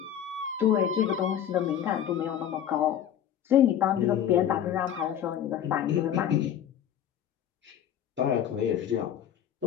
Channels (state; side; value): quieter; right; 9.9 dB